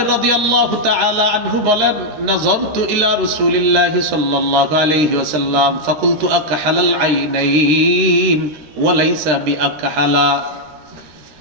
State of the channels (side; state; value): left; late; 13 ms